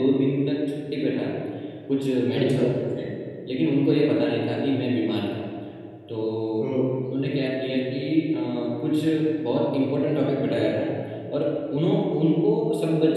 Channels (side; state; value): both; identical; correlation 1.00